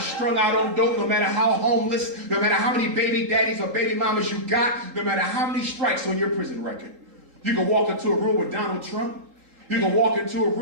out on dope, no matter how homeless, no matter how many baby daddies or baby mamas you got, no matter how many strikes on your prison record, you can walk into a room with Donald Trump. You can walk into a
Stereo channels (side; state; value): left; late; 3.8 ms